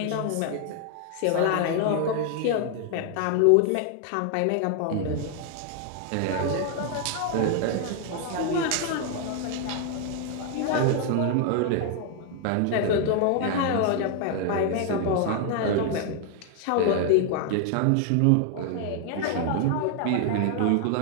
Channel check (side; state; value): both; different; correlation 0.00